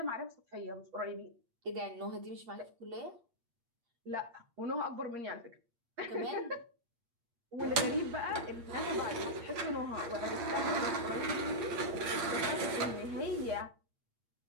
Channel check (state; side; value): late; left; 8.5 ms